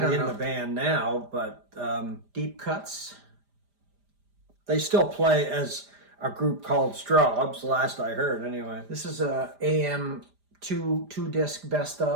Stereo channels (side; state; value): left; late; 5.0 ms